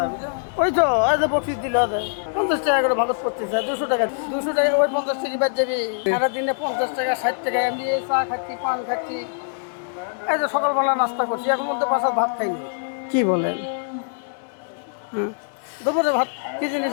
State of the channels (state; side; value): silent; right; digital silence